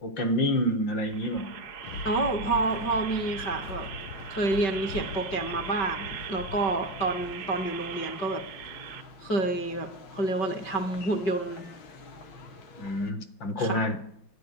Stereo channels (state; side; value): late; right; 5.2 ms